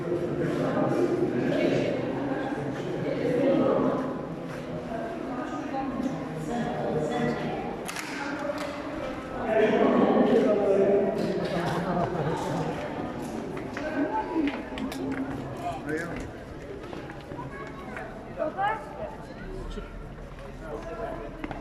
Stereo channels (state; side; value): identical; both; correlation 1.00